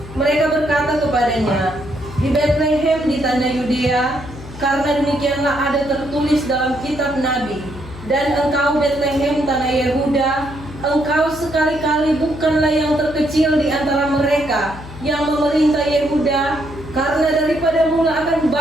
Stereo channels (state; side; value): noise; left; hum, 15 dB below the sound